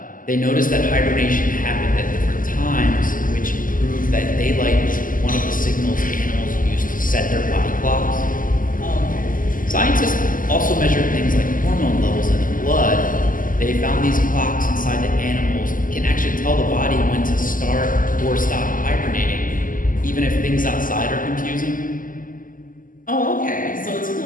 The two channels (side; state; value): right; late; 0.39 ms